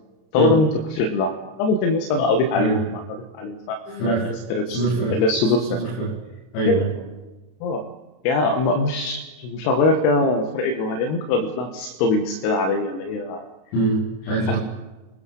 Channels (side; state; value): right; late; 32 ms